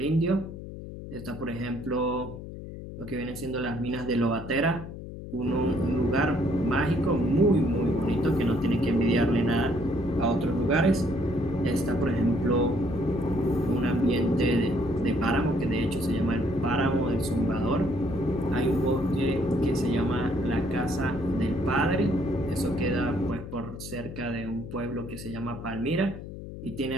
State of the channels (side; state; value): left; noise; hum, 11 dB below the sound